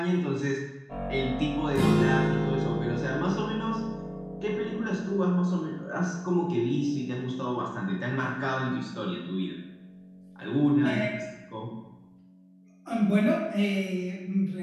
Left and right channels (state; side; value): identical; both; correlation 1.00